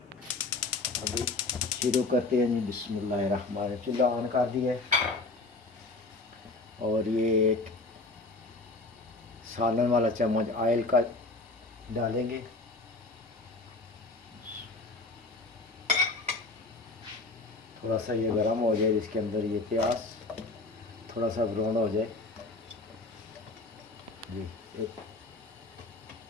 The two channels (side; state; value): right; quieter; 3.2 dB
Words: अभी शुरू करते हैं जी। बिस्मिल्लाहिर्रहमानिर्रहीम। चूल्हा ऑन कर दिया है और ये एक सालन वाला चम्मच ऑयल का डालेंगे। थोड़ा सा ये गर्म हो जाए, इसके अंदर ये प्याज थोड़ा सा ब्राउन हो जाए जी।